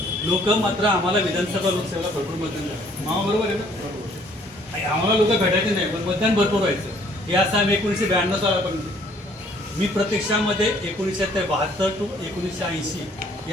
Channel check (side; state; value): both; normal; correlation 0.61